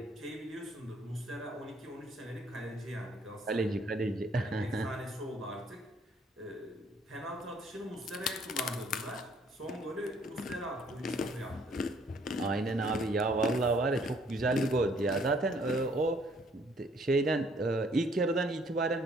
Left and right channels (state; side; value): normal; both; correlation 0.63